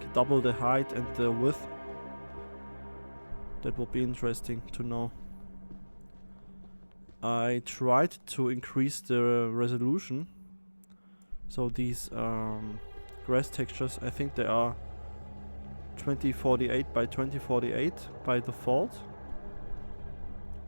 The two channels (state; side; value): inverted; both; correlation -1.00